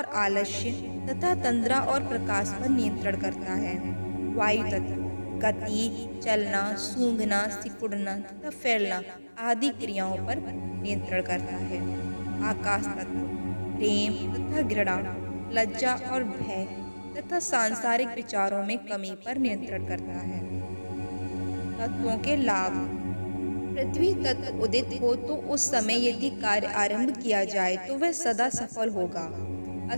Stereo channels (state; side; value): inverted; both; correlation -1.00